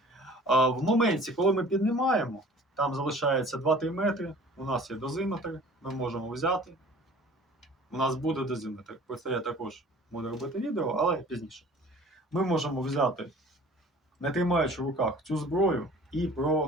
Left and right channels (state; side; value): normal; both; correlation 0.47